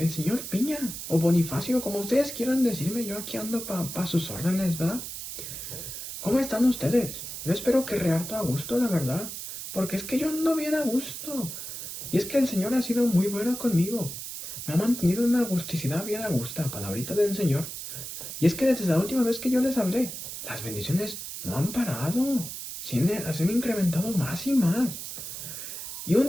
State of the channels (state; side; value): noise; right; hiss, 8 dB below the sound